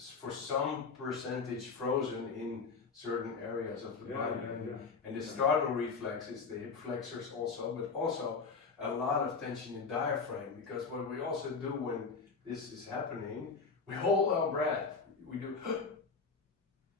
for some percentage frozen in certain areas of the body. And the startle reflex is the hip flexors also, but also a lot of tension in diaphragm, because what we also do when this is happening, we hold our breath. We do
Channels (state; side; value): quieter; right; 4.9 dB